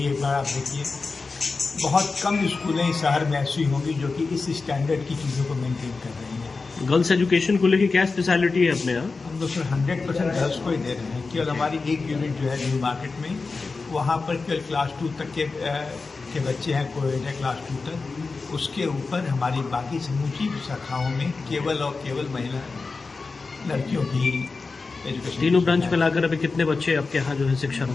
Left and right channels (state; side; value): quieter; right; 4.1 dB